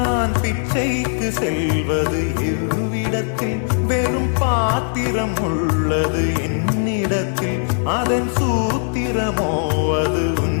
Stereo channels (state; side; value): silent; right; digital silence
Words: பிச்சைக்கு செல்வது எவ்விடத்தில் வெறும் பாத்திரம் உள்ளது என்னிடத்தில் அதன் சூத்திரமோ அது